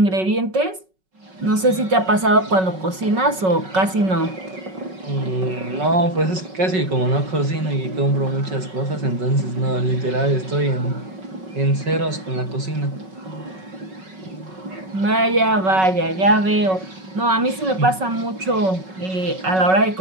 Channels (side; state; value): left; late; 5.4 ms